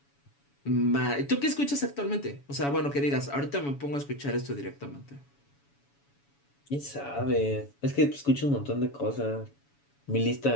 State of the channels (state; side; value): late; right; 7.1 ms